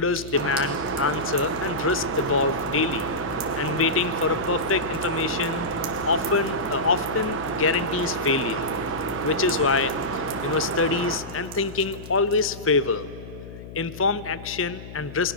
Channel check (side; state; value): left; noise; hum, 13 dB below the sound